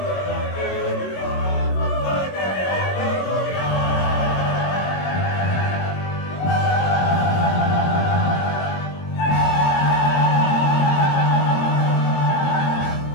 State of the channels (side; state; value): right; late; 22 ms